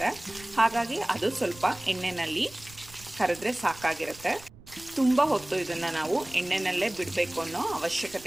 ಹಾಗಾಗಿ ಅದು ಸ್ವಲ್ಪ ಎಣ್ಣೆಯಲ್ಲಿ ಕರೆದ್ರೆ ಸಾಕಾಗಿರುತ್ತೆ. ತುಂಬ ಹೊತ್ತು ಇದನ್ನು ನಾವು ಎಣ್ಣೆನಲ್ಲೇ ಬಿಡಬೇಕು ಅನ್ನೋ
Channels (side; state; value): right; noise; rumble, 21 dB below the sound